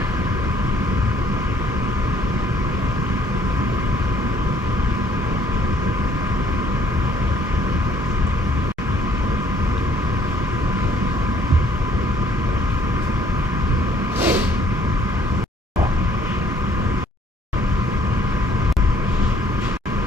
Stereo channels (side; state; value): both; normal; correlation 0.62